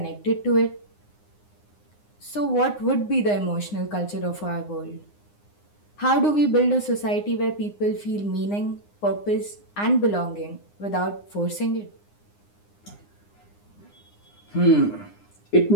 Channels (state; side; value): late; right; 9.8 ms